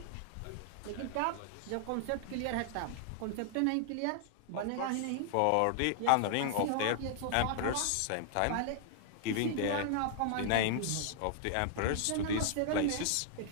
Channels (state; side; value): different; both; correlation -0.01